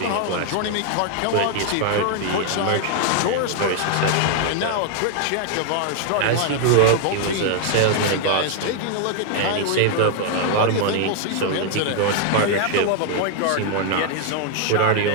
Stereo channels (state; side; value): different; both; correlation 0.00